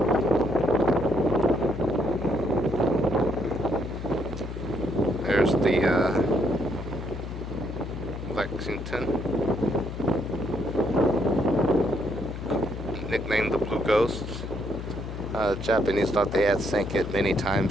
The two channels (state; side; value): noise; left; hum, 8 dB below the sound